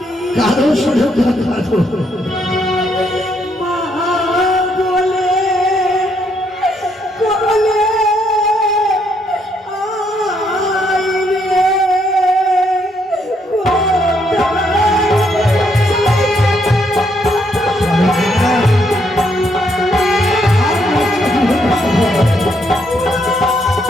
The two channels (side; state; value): both; normal; correlation 0.73